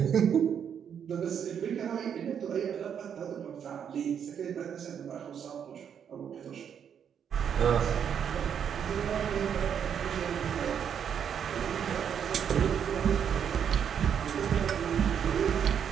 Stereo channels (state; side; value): quieter; left; 8.1 dB